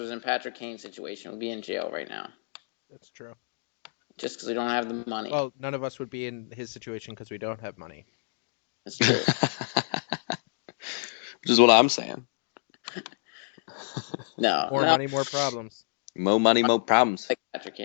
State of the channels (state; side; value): silent; right; digital silence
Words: in Patrick Kane's situation, we'd be in jail right now, That's true. just because we don't have the money. Well, none of us would be in his situation because we don't have money. That's true. Which is what I'm saying. No, More no, money, more problems. Mo money, mo problems. like Patrick